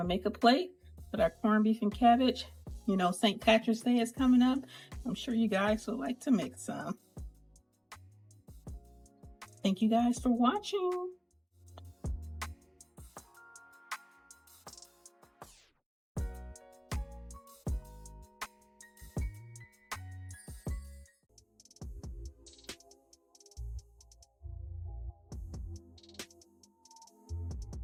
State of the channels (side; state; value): both; identical; correlation 1.00